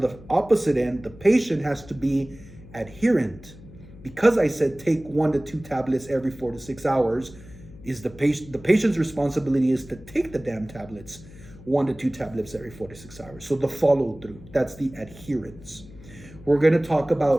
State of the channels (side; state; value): left; noise; hum, 19 dB below the sound